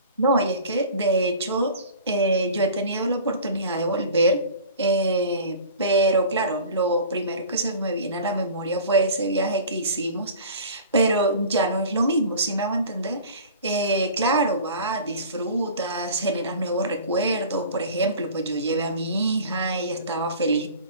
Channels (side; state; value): both; inverted; correlation -0.41